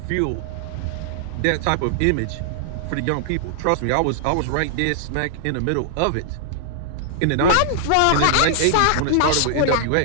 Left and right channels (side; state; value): both; different; correlation -0.01